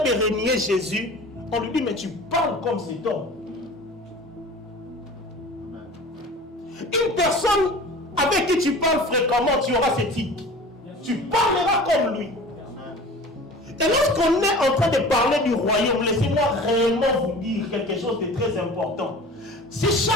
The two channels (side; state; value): both; normal; correlation 0.40